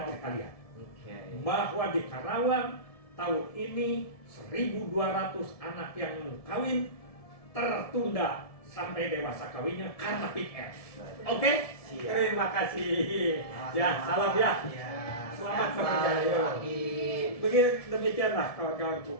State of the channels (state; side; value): late; right; 1.7 ms